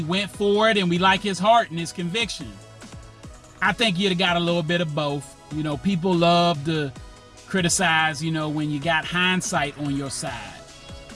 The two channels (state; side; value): identical; both; correlation 1.00